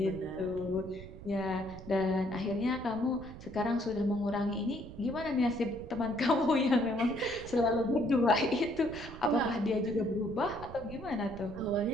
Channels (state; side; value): noise; right; rumble, 14 dB below the sound